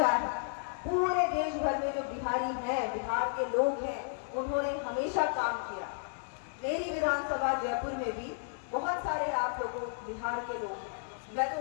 है। पूरे देश भर में जो बिहारी हैं, बिहार के लोग हैं, उन्होंने हमेशा काम किया। मेरी विधानसभा जयपुर में भी बहुत सारे आप लोगों बिहार के लोग, मैं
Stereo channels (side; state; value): right; silent; digital silence